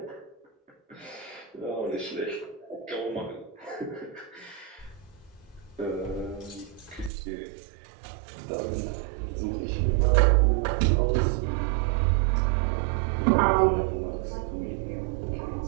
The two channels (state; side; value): drops out; left; at 7.1 s